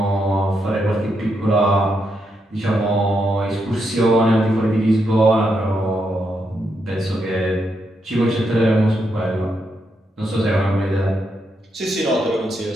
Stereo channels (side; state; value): both; normal; correlation 0.81